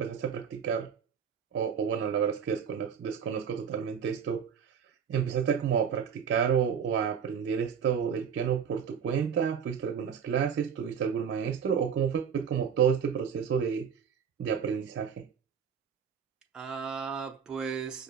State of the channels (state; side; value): quieter; left; 7.3 dB